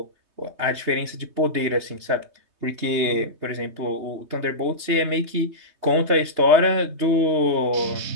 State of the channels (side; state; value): left; late; 3.2 ms